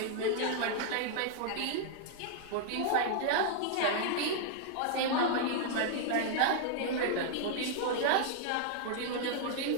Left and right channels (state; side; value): different; both; correlation -0.01